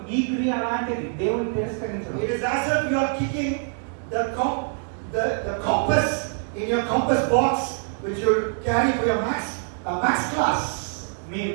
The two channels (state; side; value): silent; left; 60 dB below the other